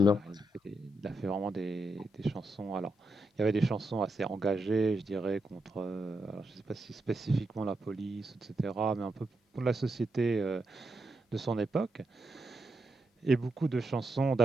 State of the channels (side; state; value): both; normal; correlation 0.84